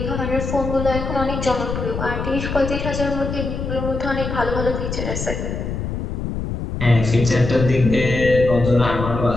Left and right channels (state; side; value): noise; left; rumble, 4 dB below the sound